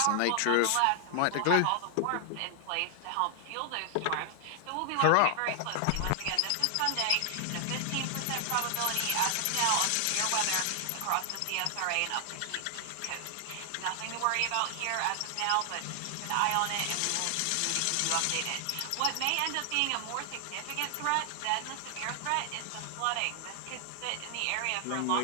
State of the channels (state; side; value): different; both; correlation 0.00